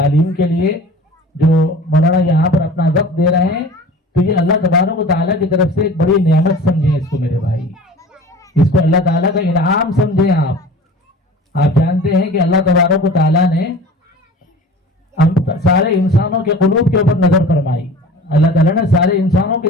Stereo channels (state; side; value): normal; both; correlation 0.41